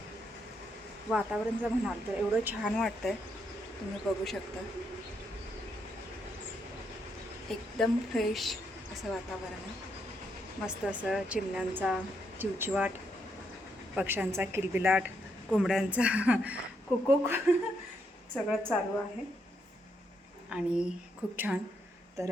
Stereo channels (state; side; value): normal; both; correlation 0.78